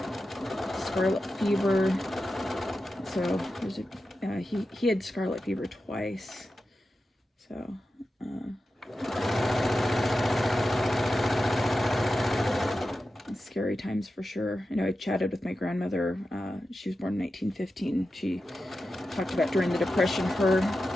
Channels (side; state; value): both; normal; correlation 0.91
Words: scarlet fever. So there's a, he had scarlet fever twice. So, scary times for sure. I know I chatted with my grandmother. She was born in 1915. She talked about during the Depression, her